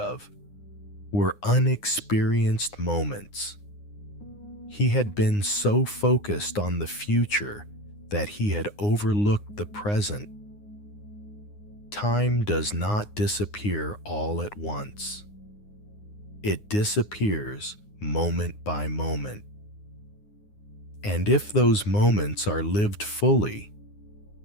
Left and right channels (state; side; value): late; right; 9.7 ms